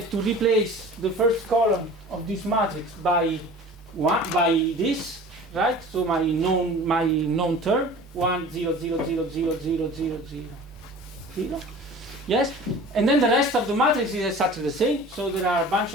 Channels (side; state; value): both; normal; correlation 0.41